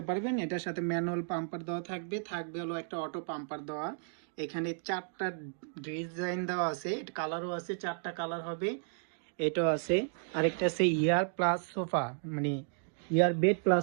পারবেন, এটার সাথে ম্যানুয়াল পাম্পার দেওয়া থাকবে, হলো একটা অটো পাম্পার দেওয়া। এখানে 4টা ডিজাইন দেওয়া আছে, কালারও আছে, 4টা কালার হবে। এটাও আছে, আরেকটা আছে ইয়ার প্লাস সোফা, মানে ইয়ার বেড প্লাস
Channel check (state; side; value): silent; left; digital silence